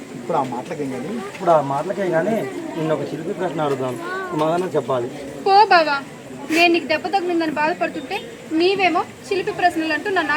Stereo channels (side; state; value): both; identical; correlation 1.00